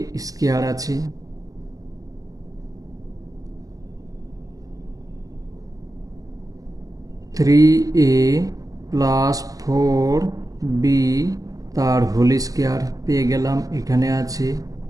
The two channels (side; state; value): left; late; 0.17 ms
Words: স্কয়ার আছে, 3A প্লাস 4B তার হোল স্কয়ার পেয়ে গেলাম, এখানে আছে,